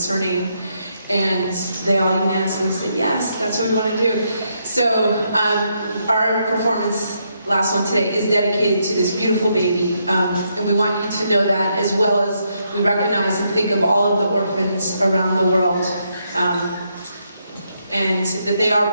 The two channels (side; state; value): both; inverted; correlation -0.78